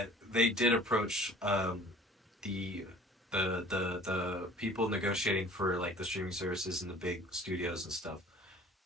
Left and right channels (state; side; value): normal; both; correlation 0.49